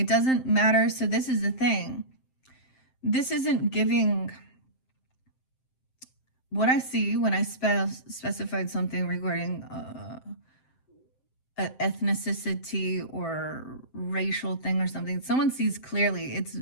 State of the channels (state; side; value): late; right; 7.7 ms